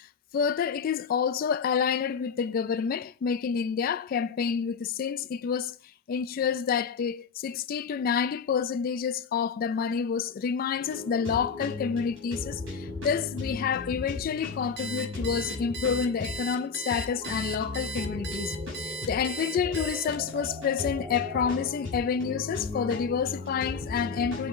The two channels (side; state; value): right; quieter; 5.8 dB